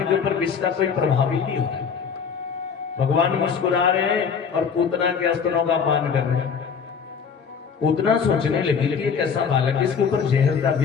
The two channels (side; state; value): right; quieter; 6.4 dB